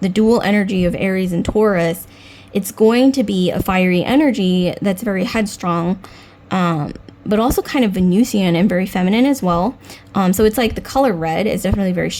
the dual energy of Aries and Taurus, it's going to be a fiery energy that's very headstrong, but also kind of Venusian and very feminine as well. So it's like the color red is definitely very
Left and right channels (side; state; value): both; identical; correlation 1.00